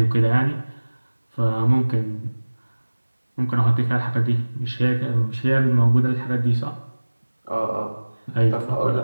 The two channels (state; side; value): inverted; both; correlation -1.00